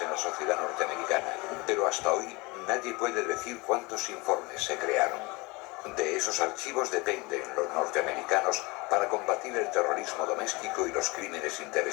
en la sociedad norteamericana, pero hasta hoy nadie puede decir cuántos informes se crearon. De esos archivos dependen los norteamericanos para combatir el terrorismo doméstico y los crímenes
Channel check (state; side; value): quieter; right; 25.3 dB